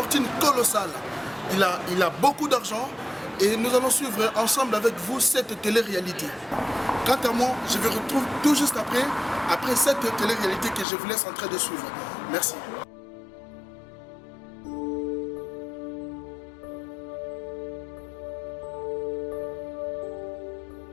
colossale. Il a beaucoup d'argent et nous allons suivre ensemble avec vous cette télé-réalité. Quant à moi, je vous retrouve tout juste après cette télé-réalité que je vous laisse en train de suivre. Merci.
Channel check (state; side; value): drops out; right; at 10.9 s